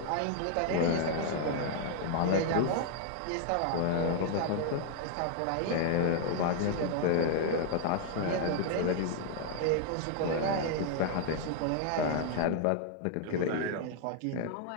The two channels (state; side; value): different; both; correlation 0.00